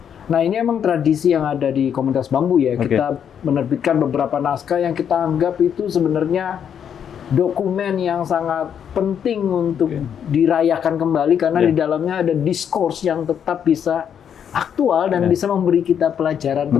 Nah, ini emang tradisi yang ada di Komunitas Bambu ya. Kita menerbitkan beberapa naskah yang kita anggap itu sebenarnya dokumen yang sangat penting untuk dirayakan kembali karena di dalamnya ada diskurs yang tetap bisa aktual dan bisa memberi kita pelajaran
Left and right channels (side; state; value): right; quieter; 8.4 dB